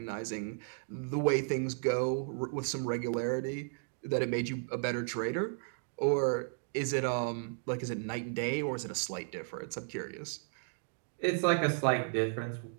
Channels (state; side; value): silent; left; digital silence